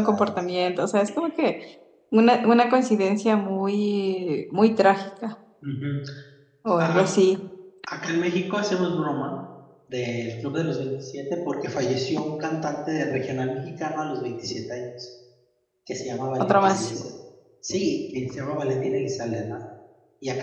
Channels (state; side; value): identical; both; correlation 1.00